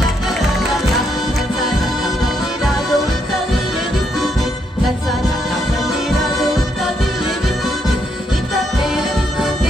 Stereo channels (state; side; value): normal; both; correlation 0.76